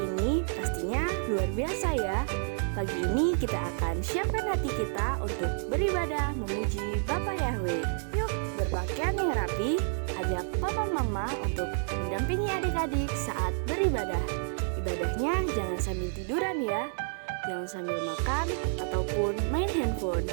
Pastinya luar biasa ya. Pagi ini kita akan siapkan hati kita untuk beribadah memuji Bapa Yahweh. Yuk berpakaian yang rapi, ajak papa mama untuk mendampingi adik-adik saat beribadah. Ibadahnya jangan sambil tiduran ya, jangan sambil makan ataupun main handphone.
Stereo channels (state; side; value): silent; left; digital silence